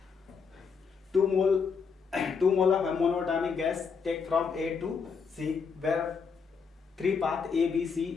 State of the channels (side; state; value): right; quieter; 5.7 dB